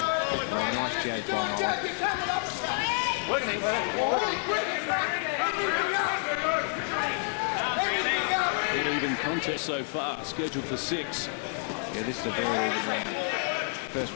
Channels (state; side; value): silent; right; 59 dB below the other